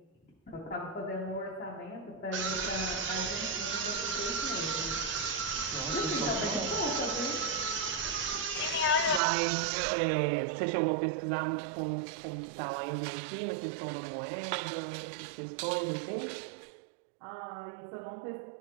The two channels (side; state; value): left; drops out; at 9.2 s